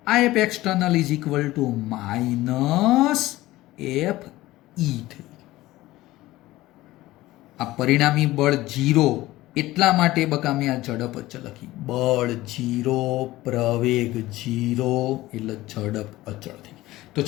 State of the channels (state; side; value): quieter; right; 17.3 dB